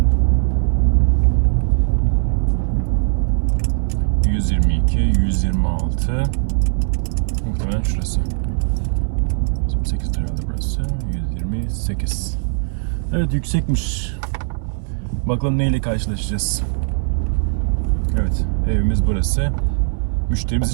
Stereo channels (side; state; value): left; silent; 65 dB below the other